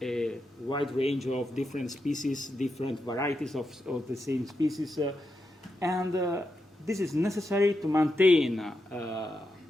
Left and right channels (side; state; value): both; normal; correlation 0.86